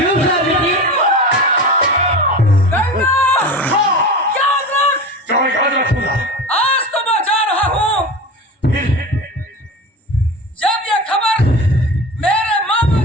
स्वामी जी? याद रखूंगा। आज तो मैं जा रहा हूँ। फिर जब ये खबर मेरे मामा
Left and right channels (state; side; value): normal; both; correlation 0.30